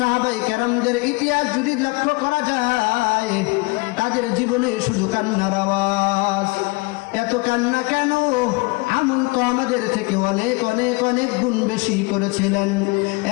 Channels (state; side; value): quieter; right; 26.3 dB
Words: কেরামদের ইতিহাস যদি লক্ষ্য করা যায়, তাদের জীবনে শুধু কান্নার আওয়াজ। এত কান্না কেন? আমল তো আমাদের থেকে অনেক অনেক অনেক গুণ বেশি করেছিলেন,